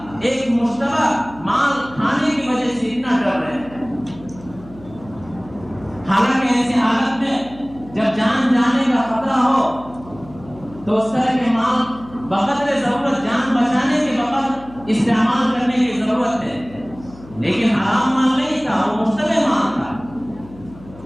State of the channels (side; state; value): left; noise; hum, 19 dB below the sound